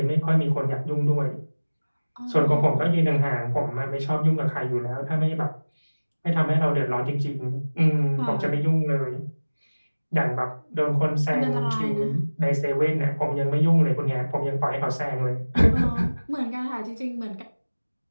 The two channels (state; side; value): inverted; both; correlation -1.00